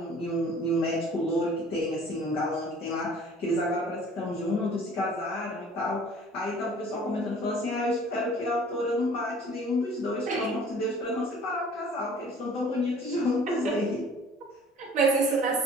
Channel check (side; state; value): both; normal; correlation 0.50